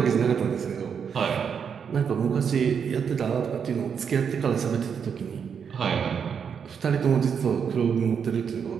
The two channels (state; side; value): quieter; left; 7.0 dB